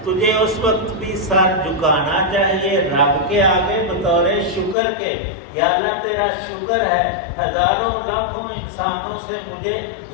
تجھے اس وقت بھی سر جھکانا چاہیے رب کے آگے بطور شکر کے، یا اللہ تیرا شکر ہے ہزاروں لاکھوں انسانوں سے مجھے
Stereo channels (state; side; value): drops out; right; at 4.8 s